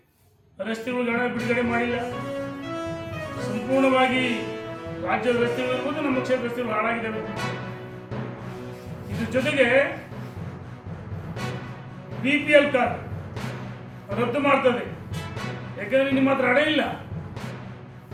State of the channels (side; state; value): both; identical; correlation 1.00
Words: ರಸ್ತೆಗಳಿಗೆ ಹಣ ಬಿಡುಗಡೆ ಮಾಡಿಲ್ಲ. ಸಂಪೂರ್ಣವಾಗಿ ರಾಜ್ಯದ ರಸ್ತೆಗಳಿರ್ಬೋದು, ನಮ್ಮ ಕ್ಷೇತ್ರ ರಸ್ತೆಗಳು ಹಾಳಾಗಿದ್ದಾವೆ. ಇದ್ರ ಜೊತೆಗೆ BPL ಕಾರ್ಡ್ ರದ್ದು ಮಾಡ್ತದೆ. ಯಾಕಂದ್ರೆ ನಿಮ್ಮ ಹತ್ರ ಹಣ ಇಲ್ಲ.